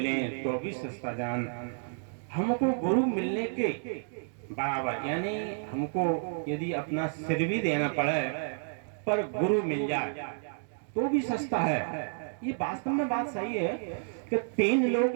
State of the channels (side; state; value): left; silent; digital silence